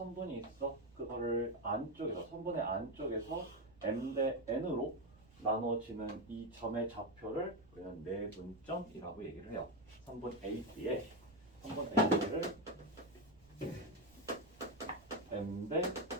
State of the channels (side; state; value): right; noise; rumble, 26 dB below the sound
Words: 있어. 그거를 안쪽에서 선분의 안쪽에서 M 대 N으로 나눠지는 이 점의 좌표를 우리는 내분점이라고 얘기를 해요. 선분 AB의 선분 AB를 M 대